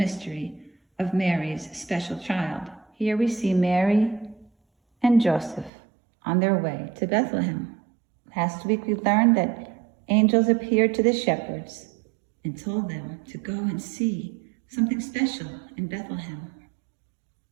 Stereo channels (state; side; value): drops out; left; at 5.7 s